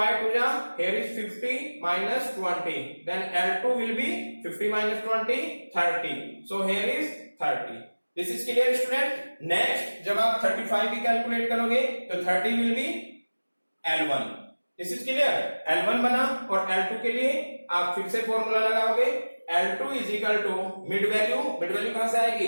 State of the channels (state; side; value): inverted; both; correlation -1.00